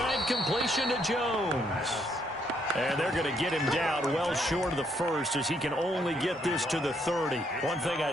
completion to Jones. And they're going to get him down well short of the first as he can only get this to the 30. One thing I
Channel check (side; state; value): both; normal; correlation 0.72